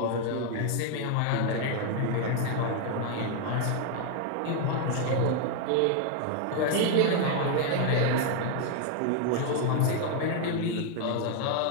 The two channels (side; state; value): both; different; correlation 0.00